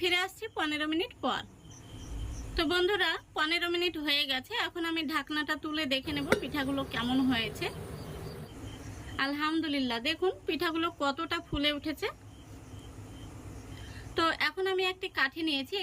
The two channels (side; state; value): both; identical; correlation 1.00